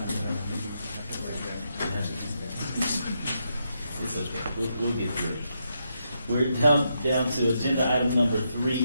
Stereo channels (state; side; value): inverted; both; correlation -0.81